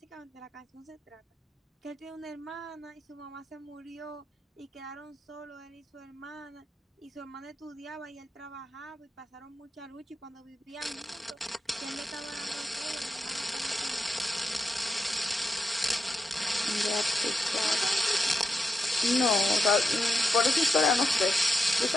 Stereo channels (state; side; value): normal; both; correlation 0.86